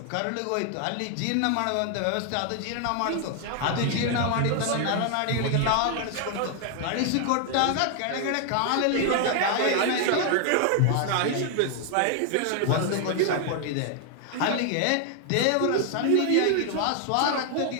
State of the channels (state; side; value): different; both; correlation 0.00